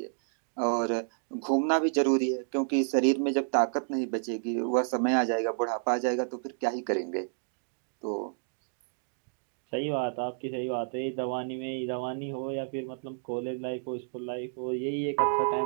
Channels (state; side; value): silent; left; digital silence